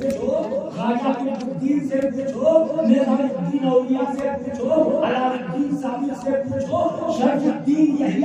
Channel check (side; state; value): both; identical; correlation 1.00